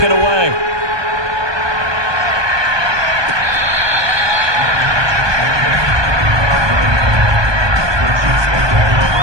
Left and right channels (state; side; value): late; left; 1.2 ms